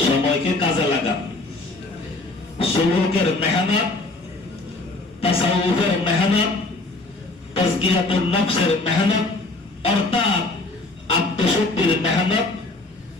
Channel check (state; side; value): quieter; right; 3.1 dB